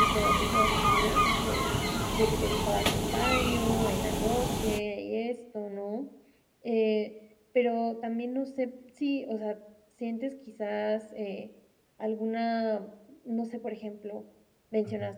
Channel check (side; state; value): both; identical; correlation 1.00